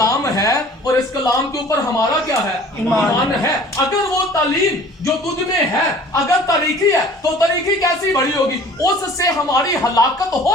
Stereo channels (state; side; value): normal; both; correlation 0.48